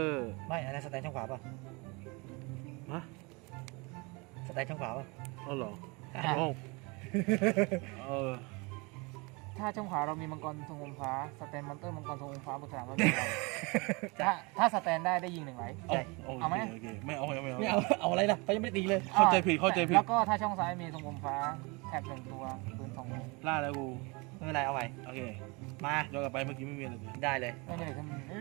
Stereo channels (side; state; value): left; quieter; 27.9 dB